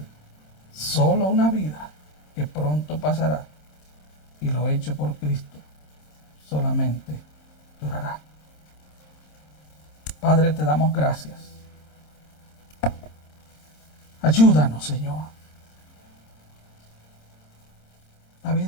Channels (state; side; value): late; right; 26 ms